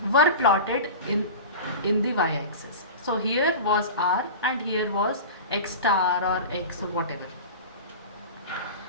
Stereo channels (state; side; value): inverted; both; correlation -0.30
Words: were plotted in the y-axis. So here was r and here was x star or x or whatever.